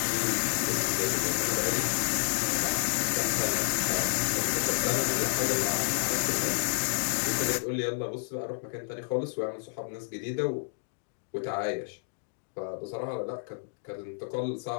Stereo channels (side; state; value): right; silent; digital silence